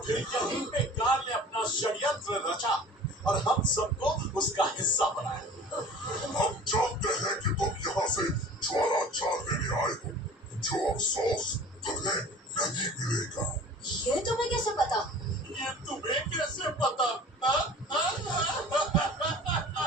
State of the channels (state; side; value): normal; both; correlation 0.43